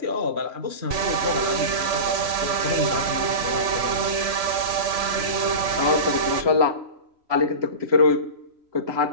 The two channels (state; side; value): late; left; 3.0 ms